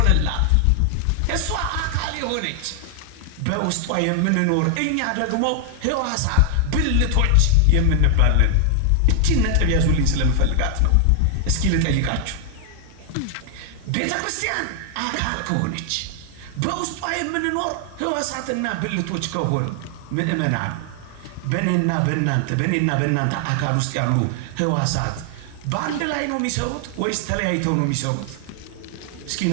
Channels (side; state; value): both; different; correlation 0.00